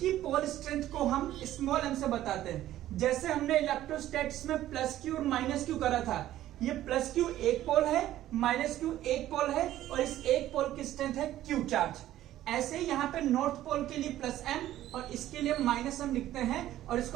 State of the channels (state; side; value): quieter; left; 13.5 dB